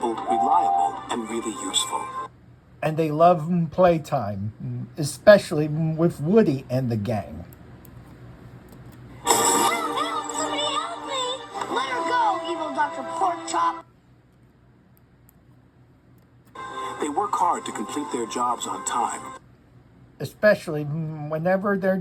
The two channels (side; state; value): both; identical; correlation 1.00